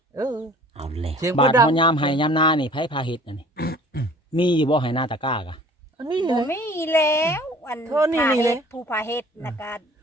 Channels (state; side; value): normal; both; correlation 0.49